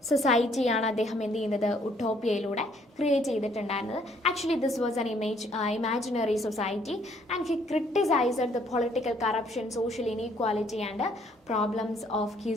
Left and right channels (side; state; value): both; normal; correlation 0.65